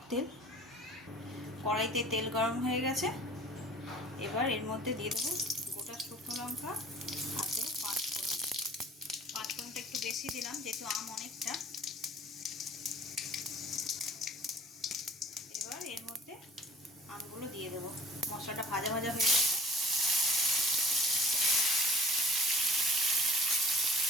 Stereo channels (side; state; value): both; normal; correlation 0.47